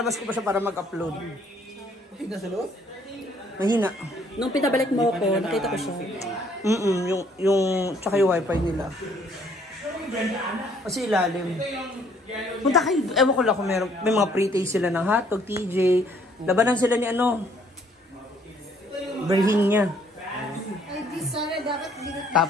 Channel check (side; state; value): both; normal; correlation 0.63